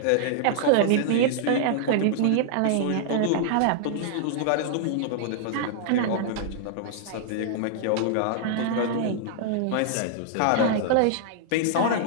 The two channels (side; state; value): both; different; correlation -0.01